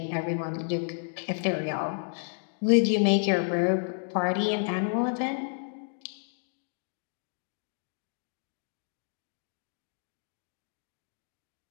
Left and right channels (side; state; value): right; silent; digital silence